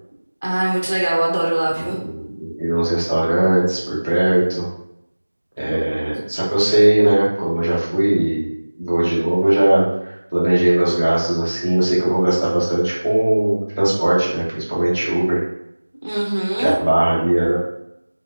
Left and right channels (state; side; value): inverted; both; correlation -1.00